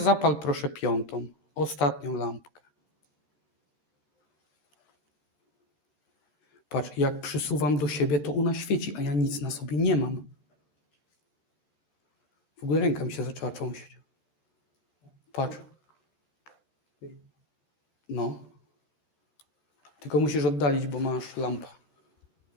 proszę piątą, ostatnią lampkę. Patrz, jak przysuwam do siebie, to ona świeci, a ja nic na sobie nie mam. W ogóle ręka mi się zaczęła trząść. Patrz. No. Tylko musisz oddalić, bo masz lampę.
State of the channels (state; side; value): late; right; 13 ms